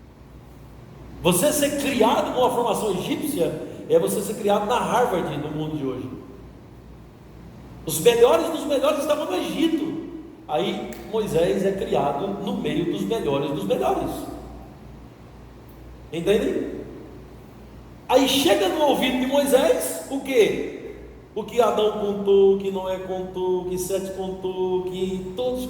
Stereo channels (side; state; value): both; identical; correlation 1.00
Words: Você ser criado com a formação egípcia é você ser criado na Harvard no mundo de hoje. Os melhores dos melhores estavam no Egito. Aí Moisés é criado no meio dos melhores dos melhores. Entendem? Aí chega no ouvido de Moisés o quê? O que Adão contou, o que Noé contou, o que Sete contou, o que todos